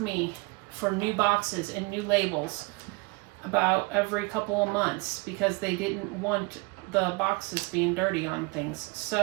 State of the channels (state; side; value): quieter; left; 26.4 dB